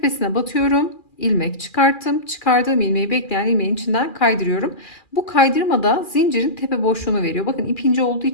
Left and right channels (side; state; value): right; late; 2.4 ms